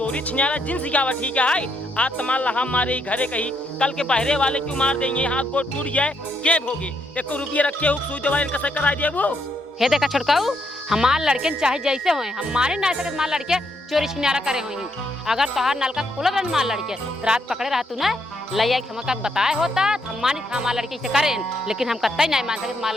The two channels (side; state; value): both; normal; correlation 0.76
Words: छिनारा जिन सिखावा ठीक है। आज तमाल हम मारे घरे कही, कल के बहरे वाले क्यों मार देंगे, हाथ गोड़ टूट जाए के भोगे, 1 रुपया रखे हो सुई दवाई कैसे करा दिया वो। हे देखा छोटकाऊ, हमार लड़के चाहे जैसे होए हमारे ना सके हमार लड़के चोरी छिनारा करे होई। अगर तोहार नलका खुला रहन हमार लड़के तो रात पकड़े रहा तू ना लैया के हमका बताए होता हम मानी था हमार लड़के से करें, लेकिन हम कतई नहीं मान सके हमार